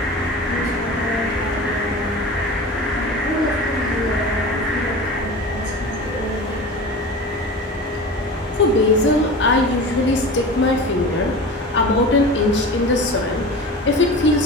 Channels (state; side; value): normal; both; correlation 0.33